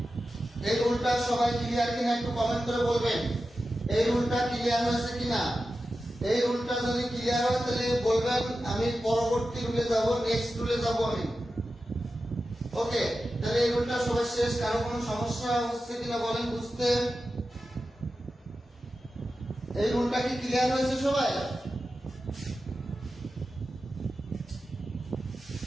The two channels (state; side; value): normal; both; correlation 0.92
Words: এই রুলটা সবাই ক্লিয়ার কিনা একটু কমেন্ট করে বলবেন। এই রুলটা ক্লিয়ার হয়েছে কিনা? এই রুলটা যদি ক্লিয়ার হয় তাহলে বলবেন আমি পরবর্তী রুলে যাব, নেক্সট রুলে যাব আমি। ওকে, তাহলে এই রুলটা সবাই শেষ। কারো কোনো সমস্যা হচ্ছে কিনা বলেন বুঝতে? এই রুলটা কি ক্লিয়ার হয়েছে সবাই?